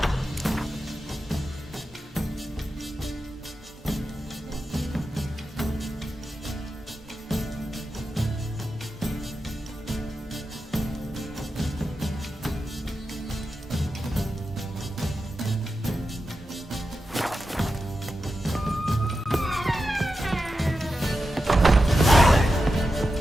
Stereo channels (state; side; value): normal; both; correlation 0.90